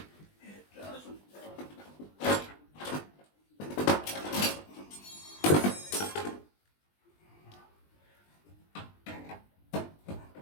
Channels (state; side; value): late; right; 20 ms